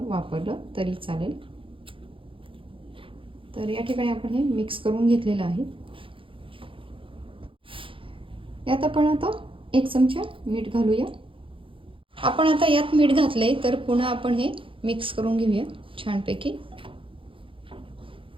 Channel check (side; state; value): left; late; 0.25 ms